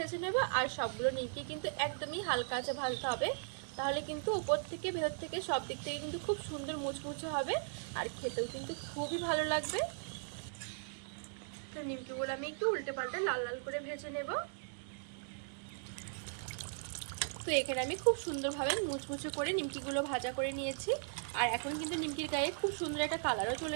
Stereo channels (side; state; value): left; silent; digital silence